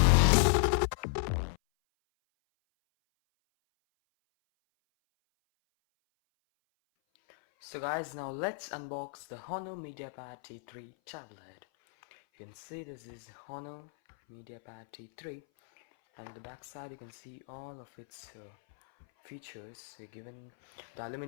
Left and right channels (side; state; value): right; silent; 54 dB below the other